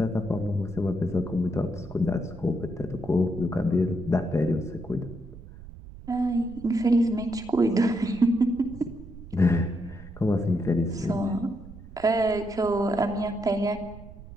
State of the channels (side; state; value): right; noise; rumble, 16 dB below the sound